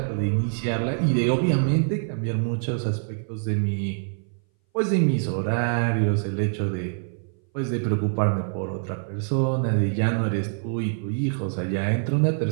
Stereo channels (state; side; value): silent; left; 60 dB below the other